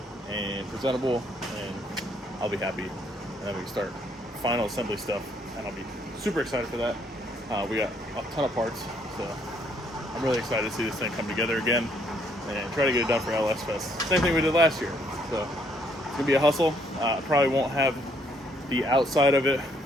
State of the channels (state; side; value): normal; both; correlation 0.68